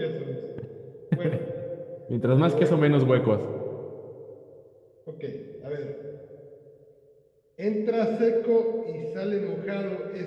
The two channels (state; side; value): identical; both; correlation 1.00